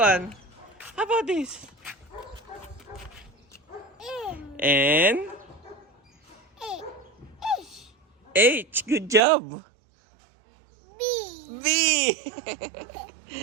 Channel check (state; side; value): drops out; left; at 9.2 s